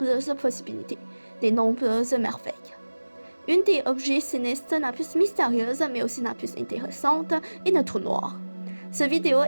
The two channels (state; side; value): inverted; both; correlation -1.00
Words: possibilités, de nombreuses merveilles. Une des objets célestes la plus mystérieuse mais aussi la plus intéressante est le trou noir. Cette vidéo